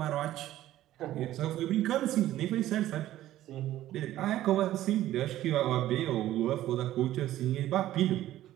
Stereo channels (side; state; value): left; quieter; 13.9 dB